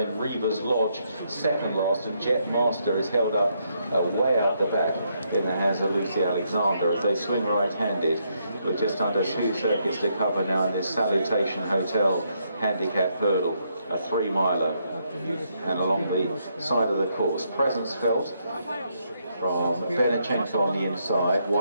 Reaver's Lodge second last, and Jet Master is held up way out the back in the hands of Lucy Alexander as they swing right-handed with just under 2 circuits to cover now in this Salutation Hotel handicap hurdle, a 3-miler, and along the side of the course, presence felt from Benachenko on the inside.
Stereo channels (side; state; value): both; inverted; correlation -0.76